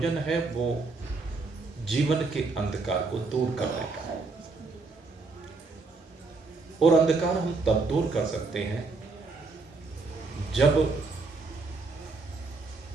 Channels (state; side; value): quieter; left; 3.9 dB